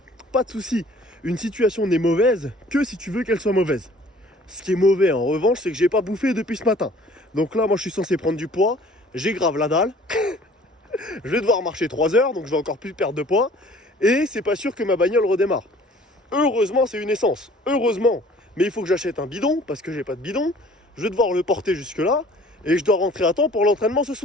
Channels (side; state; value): both; normal; correlation 0.52